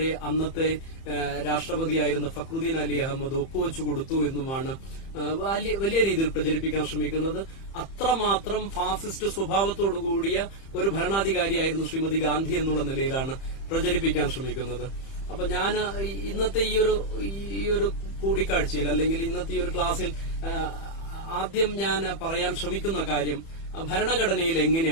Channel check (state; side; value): late; right; 30 ms